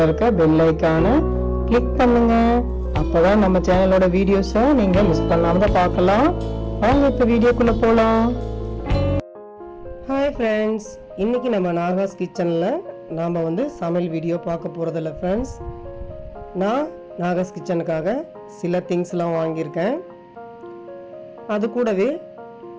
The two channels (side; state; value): both; identical; correlation 1.00